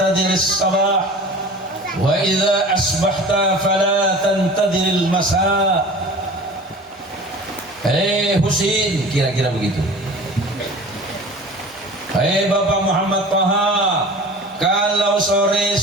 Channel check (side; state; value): both; normal; correlation 0.40